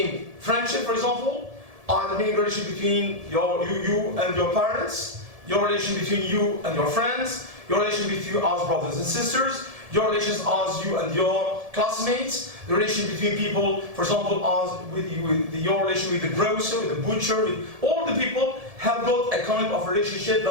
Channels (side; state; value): left; late; 1.7 ms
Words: friendship, for example, either being a relation between you and your parents, your relation between you and your friends, your relation between you as brothers and sisters, your relations as you and your classmates, the relation between people, for example, as with your relation with the grocer, with the butcher, with all the people have got a kind of relationship